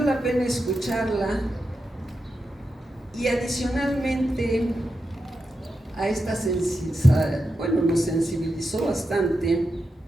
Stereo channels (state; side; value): normal; both; correlation 0.88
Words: pena escucharla y adicionalmente a esta nos sensibilizó bastante.